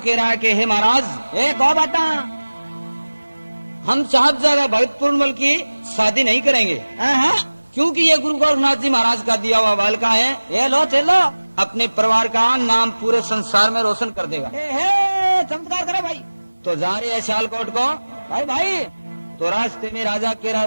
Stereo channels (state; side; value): inverted; both; correlation -1.00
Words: रहा है कि हे महाराज, एक और बता, हम साहबजादा भगत पूर्णमल की शादी नहीं करेंगे, क्योंकि ये गुरु गोरखनाथ जी महाराज का दिया हुआ बालका है। ये लो चलो, अपने परिवार का नाम पूरे संसार में रोशन कर देगा। चमत्कार करो भाई। तो जा रहे हैं सियालकोट को। भाई भाई, तो रास्ते में राजा कह